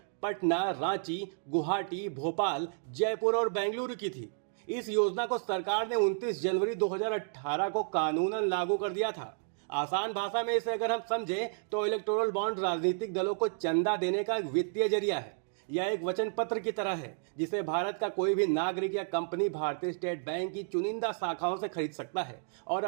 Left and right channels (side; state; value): left; silent; digital silence